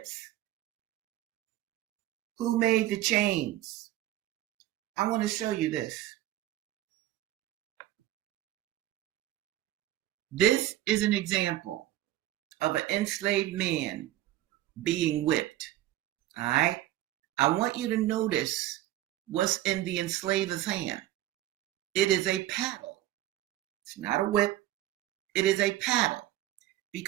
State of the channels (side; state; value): left; quieter; 14.2 dB